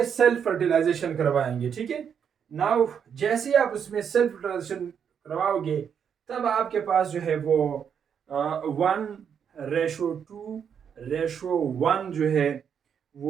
सेल्फ फर्टिलाइजेशन करवाएंगे, ठीक है। नाउ जैसे ही आप उसमें सेल्फ फर्टिलाइजेशन करवाओगे तब आपके पास जो है वो 1:2:1 जो है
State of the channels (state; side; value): quieter; left; 7.6 dB